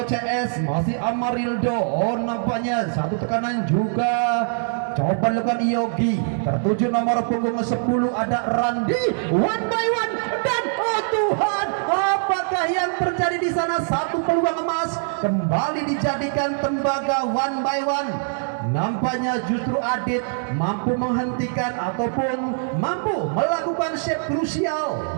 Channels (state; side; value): silent; left; digital silence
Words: CS. Masih Amarildo, oh nampaknya satu tekanan juga coba dilakukan Yogi. Tertuju nomor punggung 10 ada Randi, one by one, dan oh Tuhan, apakah yang terjadi di sana? Satu peluang emas kembali dijadikan tembaga one by one. Nampaknya justru Adit mampu menghentikan ataupun mampu melakukan save krusial